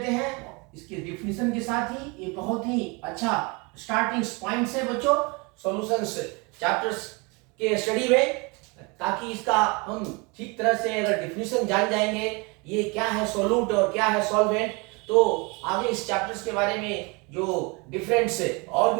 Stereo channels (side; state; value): left; quieter; 28.9 dB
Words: हैं इसके डिफिनीशन के साथ ही। ये बहुत ही अच्छा स्टार्टिंग पॉइंट्स है बच्चों सॉल्यूशंस चैप्टर्स के स्टडी में, ताकि इसका हम ठीक तरह से अगर डिफिनीशन जान जाएंगे ये क्या है सोल्यूट और क्या है सॉल्वेंट, तो आगे इस चैप्टर्स के बारे में जो डिफरेंट और